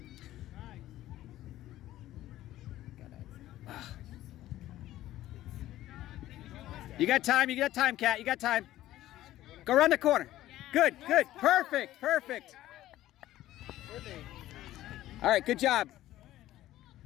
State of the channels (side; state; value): right; quieter; 14.5 dB